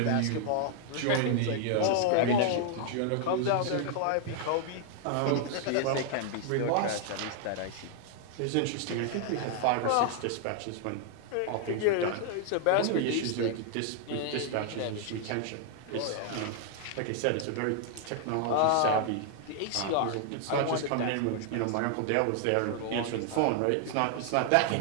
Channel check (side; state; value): both; different; correlation 0.00